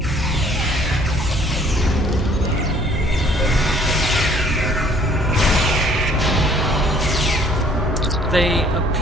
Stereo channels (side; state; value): both; normal; correlation 0.58